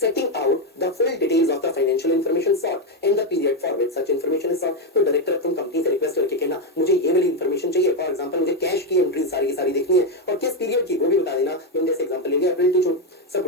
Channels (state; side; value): normal; both; correlation 0.06